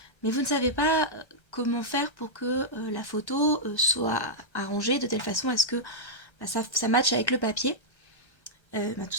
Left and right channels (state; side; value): late; right; 1.3 ms